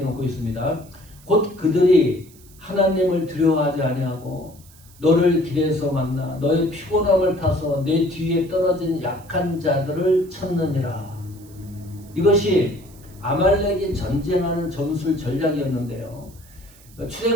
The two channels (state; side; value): noise; right; hiss, 25 dB below the sound